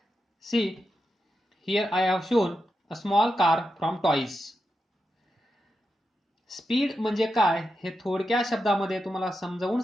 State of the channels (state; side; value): normal; both; correlation 0.88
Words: See, here I have shown a small car from toys. Speed म्हणजे काय हे थोडक्या शब्दामध्ये तुम्हाला समजावून